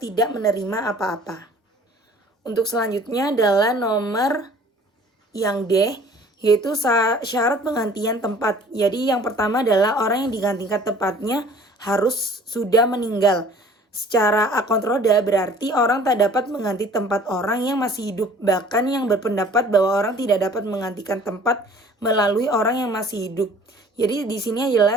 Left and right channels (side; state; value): both; normal; correlation 0.51